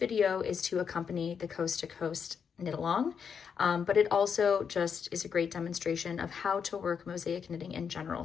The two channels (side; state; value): right; quieter; 6.8 dB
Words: is to accompany the Coast to Coast knit along, but it also just is a great demonstration of how to work mosaic knitting in general,